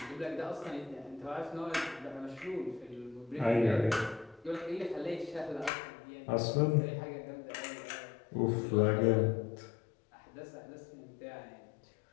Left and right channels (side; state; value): right; drops out; at 5.7 s